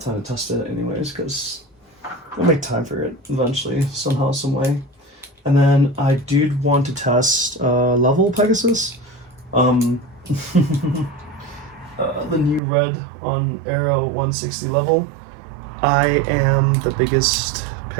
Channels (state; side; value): drops out; left; at 12.6 s